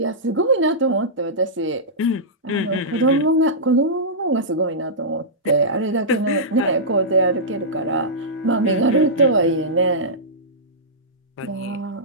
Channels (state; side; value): normal; both; correlation -0.15